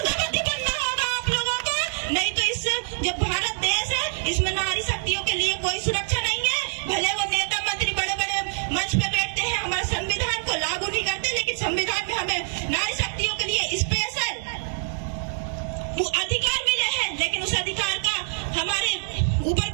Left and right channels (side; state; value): left; silent; digital silence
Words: बनना होगा आप लोगों को, नहीं तो इस जो भारत देश है इसमें नारी शक्तियों के लिए कोई सुरक्षा नहीं है। भले वो नेता मंत्री बड़े बड़े मंच पे बैठते हैं, हमारे संविधान को लागू नहीं करते, लेकिन संविधान में हमें नारी शक्तियों के लिए स्पेशल अधिकार मिले हैं, लेकिन उस अधिकार का हमारे ऊपर